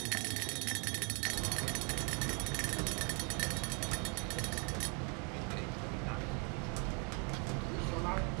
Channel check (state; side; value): quieter; left; 34.1 dB